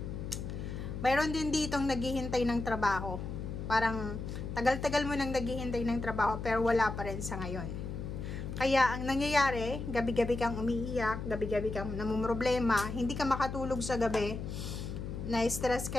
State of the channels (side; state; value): left; noise; hum, 6 dB below the sound